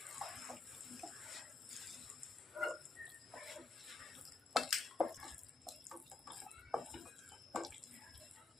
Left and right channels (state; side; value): quieter; right; 3.7 dB